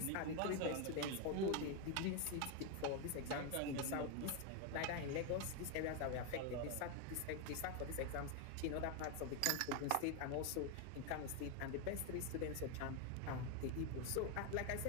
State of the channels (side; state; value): both; different; correlation 0.01